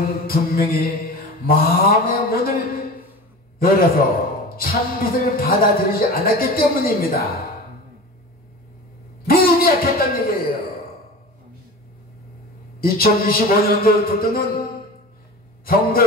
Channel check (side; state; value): both; normal; correlation 0.33